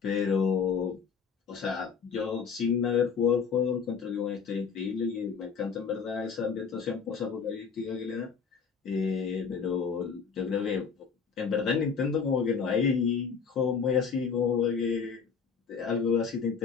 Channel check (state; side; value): quieter; right; 6.0 dB